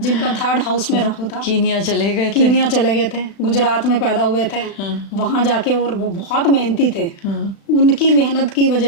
थर्ड हाउस में राहु था। कीनिया चले गए थे। कीनिया चले गए थे, गुजरात में पैदा हुए थे। हाँ। वहां जाके, और वो बहुत मेहनती थे। हाँ। उनकी मेहनत की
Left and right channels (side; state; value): right; late; 36 ms